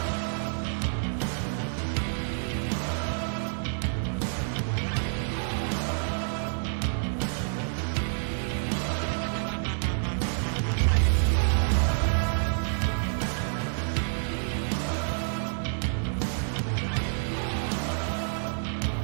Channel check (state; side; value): silent; left; digital silence